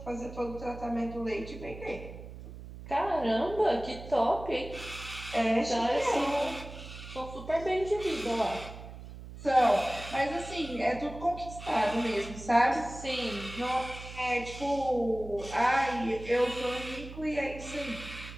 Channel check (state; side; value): noise; right; hum, 13 dB below the sound